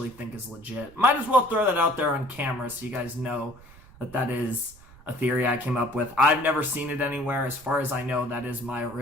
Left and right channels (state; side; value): noise; right; rumble, 22 dB below the sound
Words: think is legit. Might as well throw that out there on camera so you guys know that is a theory I came up with. I've never seen it anywhere. As far as I know, that is my